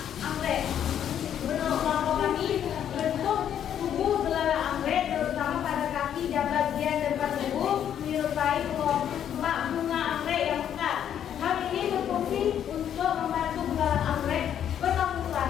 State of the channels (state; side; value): quieter; right; 9.6 dB